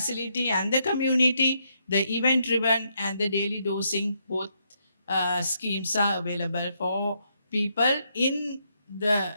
and the community, the event-driven and the daily dosing, both schemes are available for people in the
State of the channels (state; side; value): inverted; both; correlation -0.77